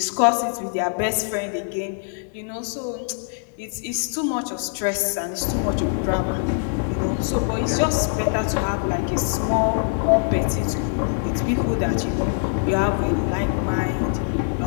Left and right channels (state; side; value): silent; right; 63 dB below the other